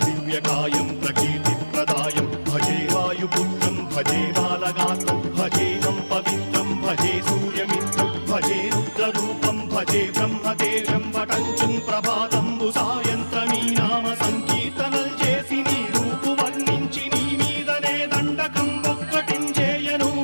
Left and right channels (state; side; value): inverted; both; correlation -1.00